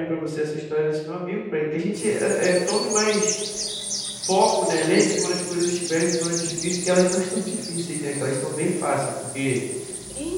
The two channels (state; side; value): identical; both; correlation 1.00